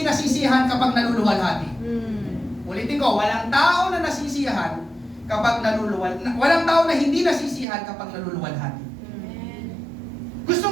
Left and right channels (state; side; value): drops out; left; at 7.7 s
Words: nasisiyahan kapag naluluwalhati. Ulitin ko, walang tao na nasisiyahan kapag walang tao na hindi nasisiyahan kapag naluluwalhati.